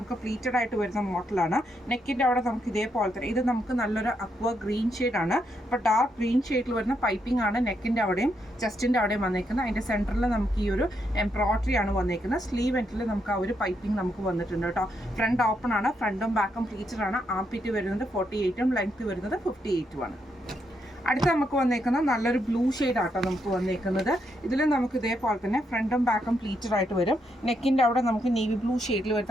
പ്ലീറ്റഡ് ആയിട്ട് വരുന്ന മോഡലാണ്. നെക്കിൻ്റെ അവിടെ നമുക്ക് ഇതേപോലെ തന്നെ ഇത് നമുക്ക് നല്ലൊരു അക്വ ഗ്രീൻ ഷെയ്ഡാണ്. അപ്പോൾ ഡാർക്ക് ഗ്രീൻ ഷെയ്ഡിൽ വരുന്ന പൈപ്പിംഗ് ആണ് നെക്കിൻ്റെ അവിടെയും ചെസ്റ്റിൻ്റെ അവിടെയും വന്നേക്കുന്നത്. അതിൻ്റെ സെൻറ്ററിൽ നമുക്ക് ഈ ഒരു എംബ്രോയിഡറി ആണ് വന്നേക്കുന്നത്. സ്ലീവ് എൻഡിൽ നമുക്ക് ആ ഒരു പൈപ്പിംഗ് നമുക്ക് വന്നിട്ടുണ്ട് കേട്ടോ. ഫ്രണ്ട് ഓപ്പൺ ആണ്, ഫ്രണ്ടും ബാക്കും പ്ലീറ്റഡ് ആണ്. ആംപിറ്റ് വരുന്നത് 48ഉം ലെങ്ത് വരുന്നത് 58ഉമാണ്. അടുത്ത നമുക്ക് വന്നേക്കുന്നത് നല്ലൊരു ബ്ലൂ ഷെയ്ഡ് ആട്ടോ നമുക്ക് വന്നേക്കുന്നത്. ഇതിൽ നമുക്ക് ഇതേപോലെ തന്നെ ഫ്രണ്ടും ബാക്കും പ്ലീറ്റഡ് ആയിട്ട് വരും. നെക്കിൻ്റെ അവിടെ നമുക്ക് നേവി ബ്ലൂ ഷെയ്ഡിൽ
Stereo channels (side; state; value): both; normal; correlation 0.79